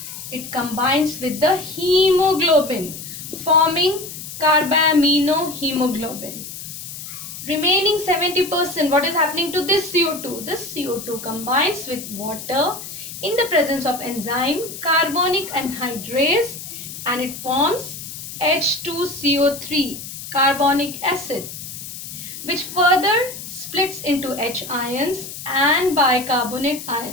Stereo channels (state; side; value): noise; left; hiss, 10 dB below the sound